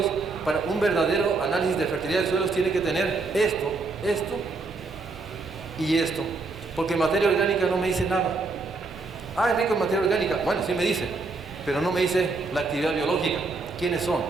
para un verdadero análisis de fertilidad de suelos, tienen que tener esto, esto y esto. Porque materia orgánica no me dice nada. Ah, es rico en materia orgánica. Bueno, sí me dice, pero no me dice la actividad biológica. ¿Quiénes son?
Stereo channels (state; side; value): quieter; left; 3.8 dB